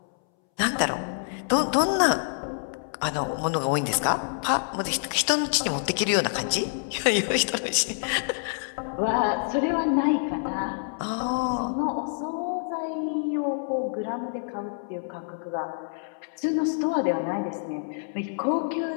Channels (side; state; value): right; silent; 60 dB below the other